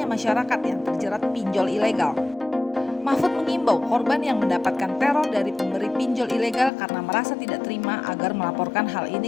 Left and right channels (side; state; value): right; drops out; at 6.7 s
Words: masyarakat yang terjerat pinjol ilegal. Mahfud mengimbau korban yang mendapatkan teror dari pemberi pinjol ilegal karena merasa tidak terima agar melaporkan hal